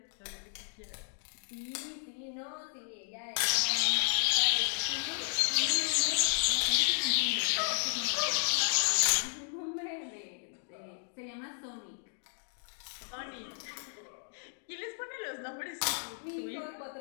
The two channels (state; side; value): silent; right; digital silence